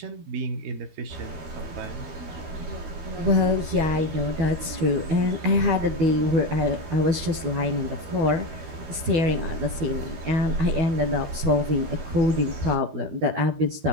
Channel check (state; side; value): late; left; 12 ms